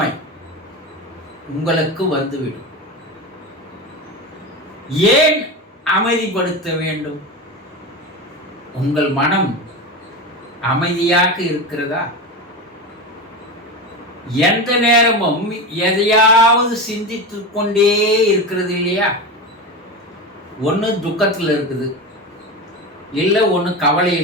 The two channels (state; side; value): normal; both; correlation 0.22